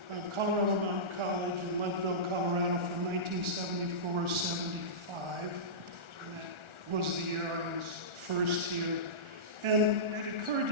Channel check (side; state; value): left; late; 1.4 ms